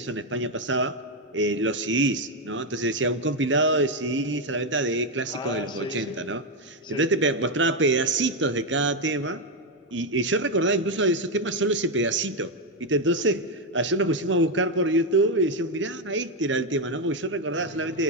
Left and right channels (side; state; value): both; normal; correlation 0.06